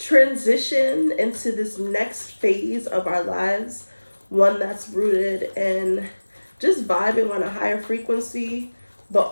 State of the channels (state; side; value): inverted; both; correlation -1.00